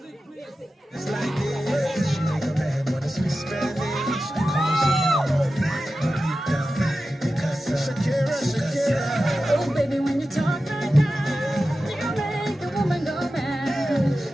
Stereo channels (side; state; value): both; normal; correlation 0.93